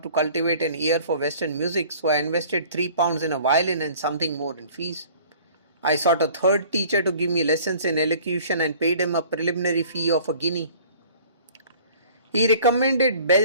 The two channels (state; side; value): inverted; both; correlation -0.49